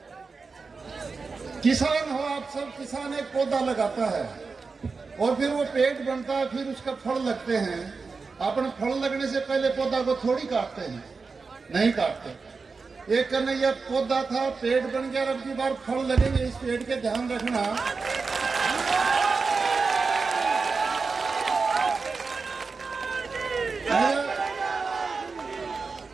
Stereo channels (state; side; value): quieter; left; 4.5 dB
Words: किसान हो आप सब, किसान एक पौधा लगाता है और फिर वो पेड़ बनता है, फिर उसका फल लगते हैं। अपन फल लगने से पहले पौधा को थोड़ी काटते हैं, नहीं काटते। एक कन्हैया पौधा था, पेड़ बन गया, अब की बार फल लगेंगे, इस पेड़ के ध्यान रखना।